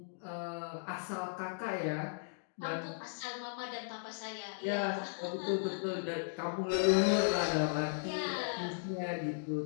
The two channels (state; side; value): silent; right; digital silence